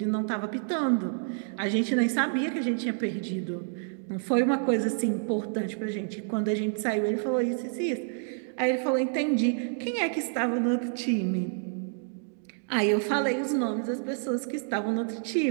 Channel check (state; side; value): silent; left; digital silence